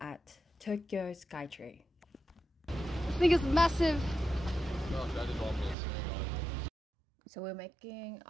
Tokyo Skytree. This thing is massive! So we're making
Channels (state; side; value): drops out; left; at 5.8 s